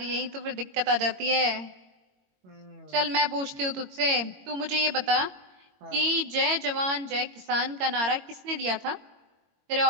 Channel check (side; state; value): left; late; 22 ms